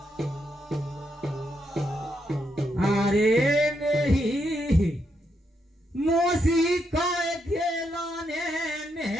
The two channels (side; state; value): both; normal; correlation 0.80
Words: अरे मेरी मोसी काय खेलाने